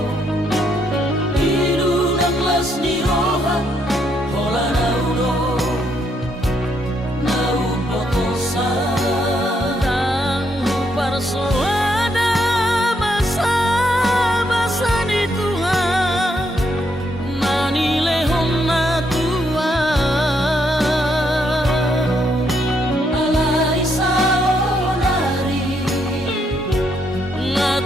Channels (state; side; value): normal; both; correlation 0.75